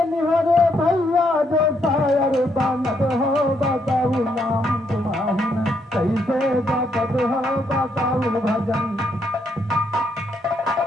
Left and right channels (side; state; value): both; normal; correlation 0.75